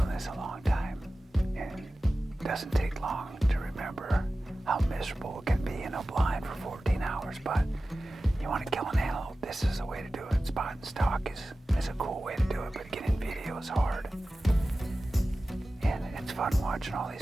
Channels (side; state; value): both; normal; correlation 0.95